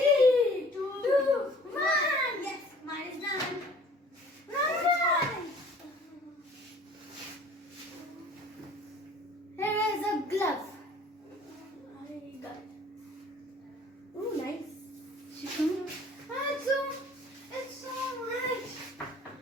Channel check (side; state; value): both; normal; correlation 0.51